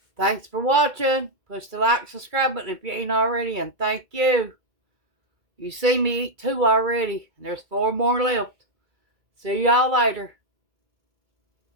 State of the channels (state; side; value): late; left; 2.3 ms